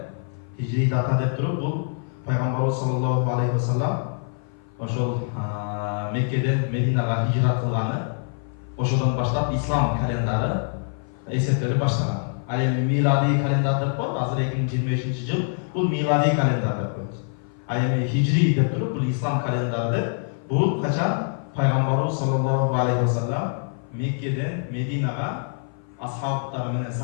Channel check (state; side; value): silent; right; 55 dB below the other